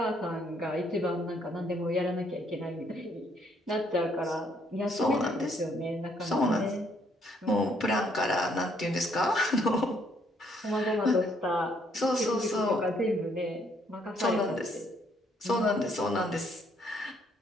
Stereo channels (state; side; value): normal; both; correlation 0.68